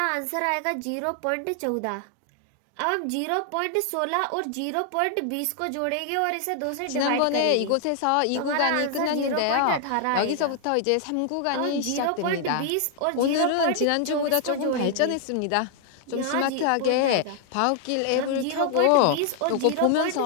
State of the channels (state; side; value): different; both; correlation 0.00